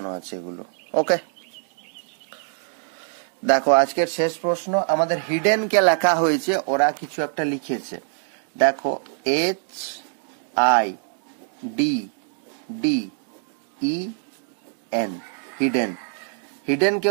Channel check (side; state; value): left; silent; 62 dB below the other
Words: আছে এগুলো। ওকে, দেখো আজকের শেষ প্রশ্ন আমাদের হিডেন কে লেখা হয়েছে, ওরা কিছু একটা লিখেছে। দেখো HIDDEN, হিডেন। হিডেন কে